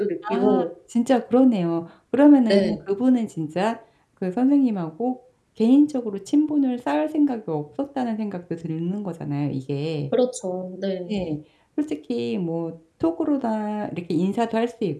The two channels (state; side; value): identical; both; correlation 1.00